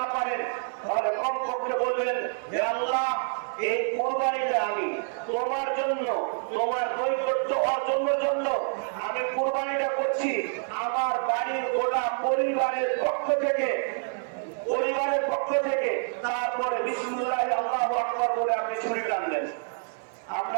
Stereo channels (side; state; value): left; silent; 60 dB below the other